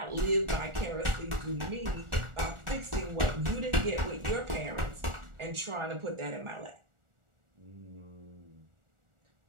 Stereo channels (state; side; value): late; left; 1.4 ms